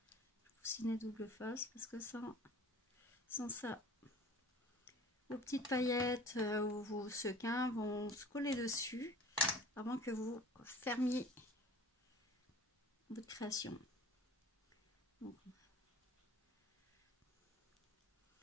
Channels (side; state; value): both; normal; correlation 0.44